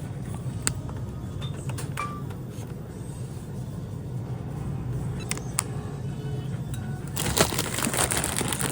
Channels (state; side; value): identical; both; correlation 1.00